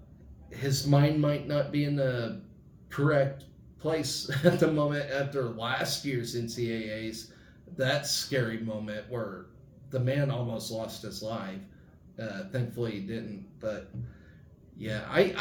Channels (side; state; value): both; identical; correlation 1.00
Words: His mind might not be in the correct place at the moment after last year's NCAAs. That scary moment where the man almost lost his life. Thankfully he didn't. But yeah,